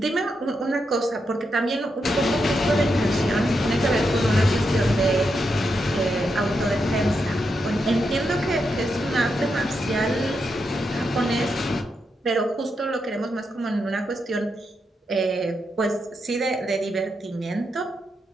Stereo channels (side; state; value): both; normal; correlation 0.84